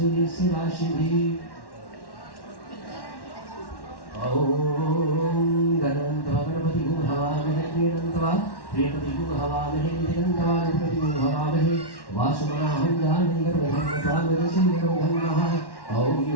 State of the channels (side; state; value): right; late; 1.1 ms